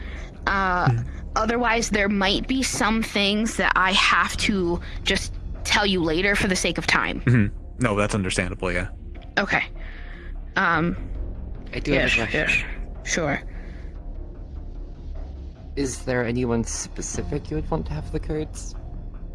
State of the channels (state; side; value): identical; both; correlation 1.00